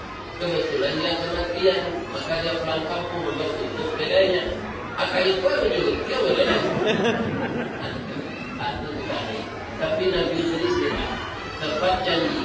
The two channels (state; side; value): identical; both; correlation 1.00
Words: Kebetulan dia kematian, maka dia pulang kampung untuk tutup bedanya. Akan itu juga, dia boleh. Tapi Nabi Idris tidak tepat